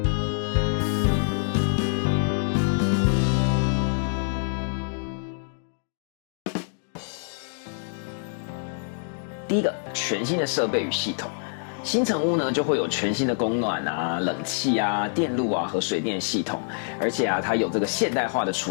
第一个，全新的设备与系统。新成屋呢就会有全新的供暖啊、冷气啊、电路啊和水电系统，而且它有这个现代化的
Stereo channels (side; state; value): right; silent; digital silence